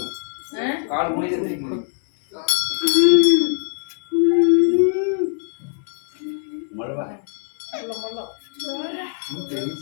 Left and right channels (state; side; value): silent; right; 63 dB below the other